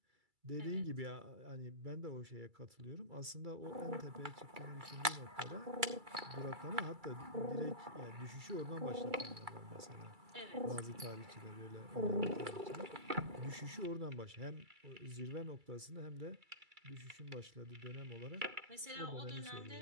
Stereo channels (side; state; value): left; late; 2.3 ms